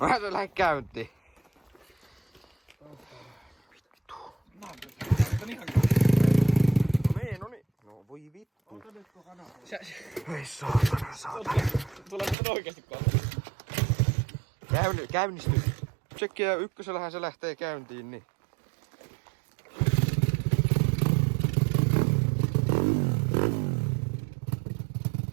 se lähde käyntiin. Vittu. No niin. No voi vittu. Ei saatana. Tulee nyt oikeesti kohta. Käynnistys. Tsekkiä ykkösellähän se lähtee käyntiin, niin.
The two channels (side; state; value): left; drops out; at 12.4 s